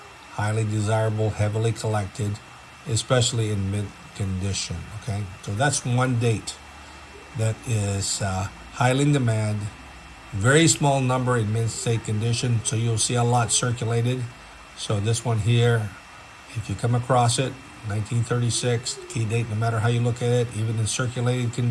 highly desirable, heavily collected, especially in mint condition. Okay, so that's one date that is highly in demand. Very small number in mint state condition, so you'll see a lot circulated. So this one here, if you come across it, 1936 key date, no matter how you look at it, even in circulated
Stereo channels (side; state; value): both; identical; correlation 1.00